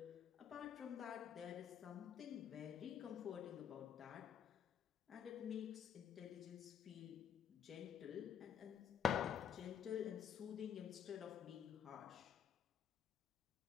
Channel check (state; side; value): quieter; right; 8.3 dB